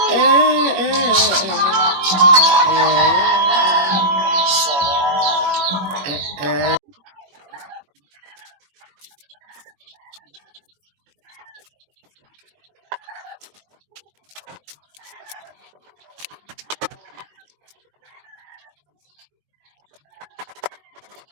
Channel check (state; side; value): late; left; 21 ms